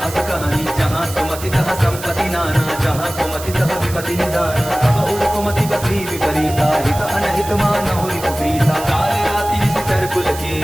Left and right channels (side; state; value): right; noise; hiss, 12 dB below the sound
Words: अस कहानी जहाँ सुमति तहाँ संपत्ति नाना जहाँ कुमति तहाँ विपति निदाना तब उर कुमति बसी विपरीता हित अनहित मानहु रिपु प्रीता काल राति निशिचर कुल